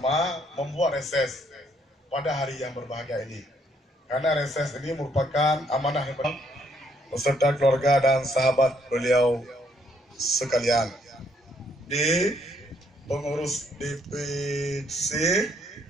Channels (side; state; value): both; normal; correlation 0.69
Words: membuat reses pada hari yang berbahagia ini. Karena reses ini merupakan amanah yang beserta keluarga dan sahabat beliau sekalian. Di pengurus DPC